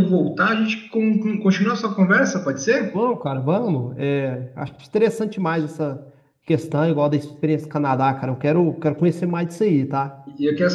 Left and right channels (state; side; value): identical; both; correlation 1.00